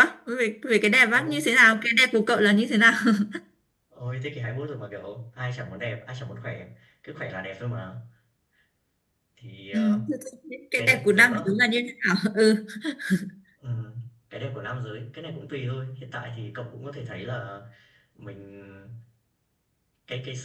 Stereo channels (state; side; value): identical; both; correlation 1.00